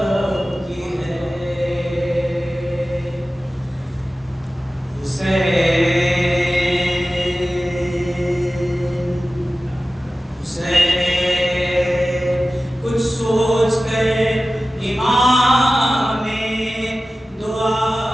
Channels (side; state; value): both; normal; correlation 0.95